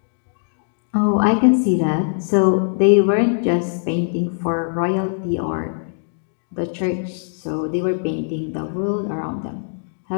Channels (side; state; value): right; silent; digital silence